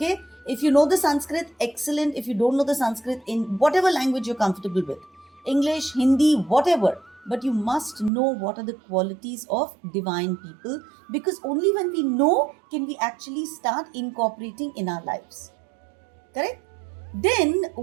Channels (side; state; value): left; drops out; at 8.1 s